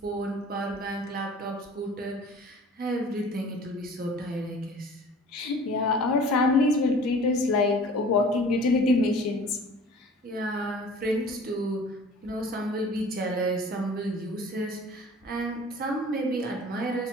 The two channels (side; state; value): both; normal; correlation 0.46